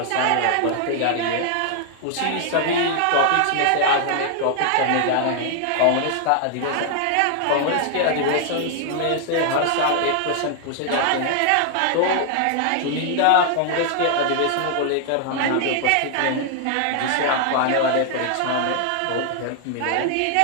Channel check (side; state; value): both; different; correlation 0.00